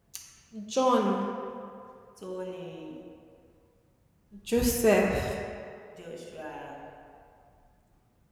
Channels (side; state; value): both; identical; correlation 1.00